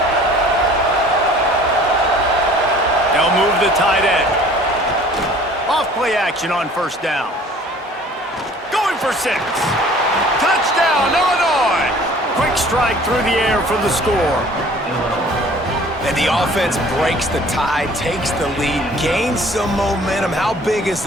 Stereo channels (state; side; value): normal; both; correlation 0.51